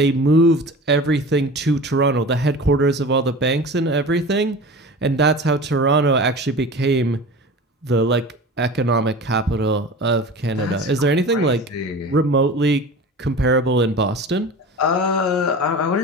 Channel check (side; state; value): both; normal; correlation 0.35